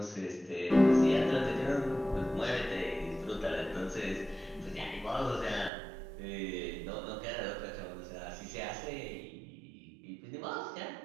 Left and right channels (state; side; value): drops out; left; at 5.7 s